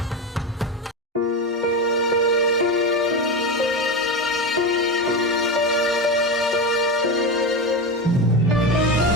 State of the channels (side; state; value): both; normal; correlation 0.19